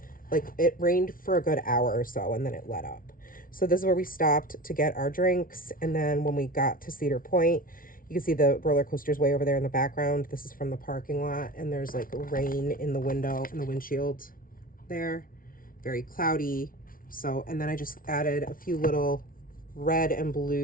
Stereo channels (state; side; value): late; right; 0.41 ms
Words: like, it rained for a good hour or so and then it let up. So this is where we stopped to get our drinks. And then when we got to Cedar Point, you can see the roller coasters way over there in the background. This is from the parking lot, and there's like rain in the window, in the windshield there. Very cloudy. So, and then I just added a few little red and